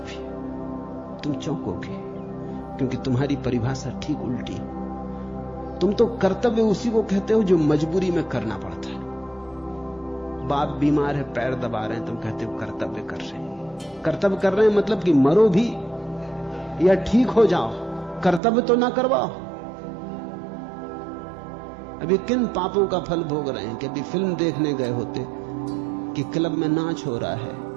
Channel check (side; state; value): left; drops out; at 18.4 s